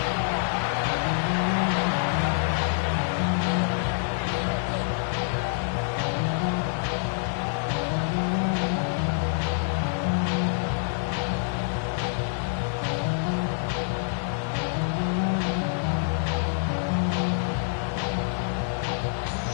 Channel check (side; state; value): right; silent; digital silence